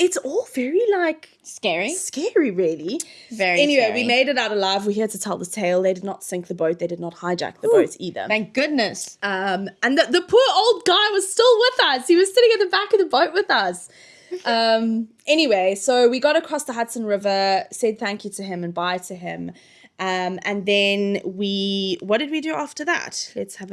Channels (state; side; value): identical; both; correlation 1.00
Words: all very, like... Scary, really. Very Anyway, scary. we made it out alive. We're here to tell the tale. They did not sink the boat. They did not hijack the boat either. Thank goodness. And the poor old guy was still with us. He was sitting at the back of the boat with us. Anyway, so we got across the Hudson River, said thank you to him and bye to him. And then what did we do after that? Let's have